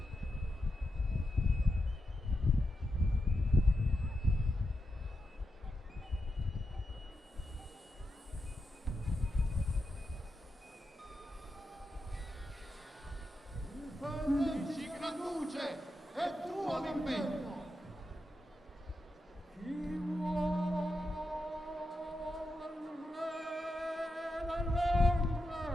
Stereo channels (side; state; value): both; normal; correlation 0.87